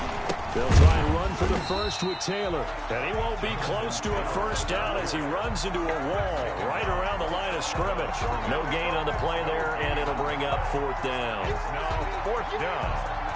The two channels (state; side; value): identical; both; correlation 1.00